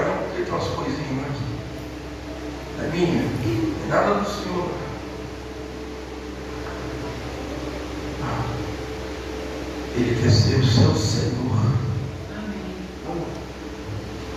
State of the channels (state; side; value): identical; both; correlation 1.00